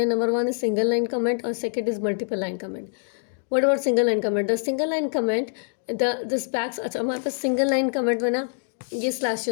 Number 1 is single line comment और second is multiple line comment. What about single line comment? The single line comment the specs. अच्छा, हमारे पास सिंगल लाइन कमेंट में ना ये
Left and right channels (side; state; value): right; silent; digital silence